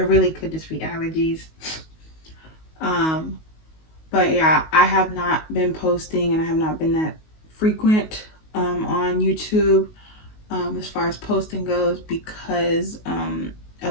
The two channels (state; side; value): late; right; 19 ms